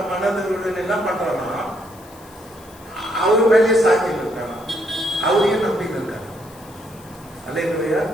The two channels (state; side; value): noise; left; hiss, 24 dB below the sound